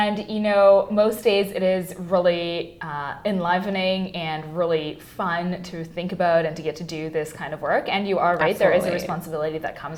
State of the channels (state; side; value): identical; both; correlation 1.00